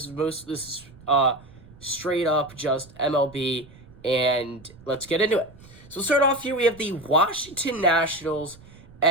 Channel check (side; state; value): right; noise; rumble, 22 dB below the sound